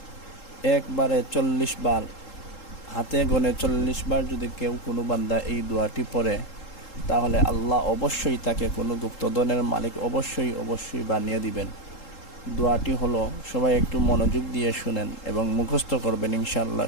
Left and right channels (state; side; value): late; right; 3.7 ms